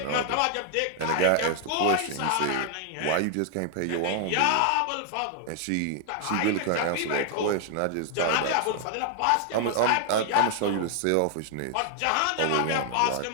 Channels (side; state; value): both; different; correlation 0.00